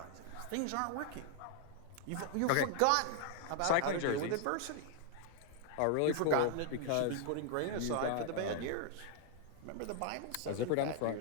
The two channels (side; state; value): both; different; correlation 0.00